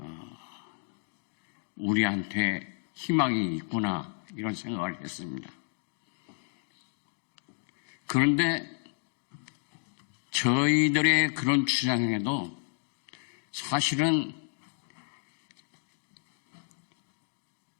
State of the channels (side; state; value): right; silent; digital silence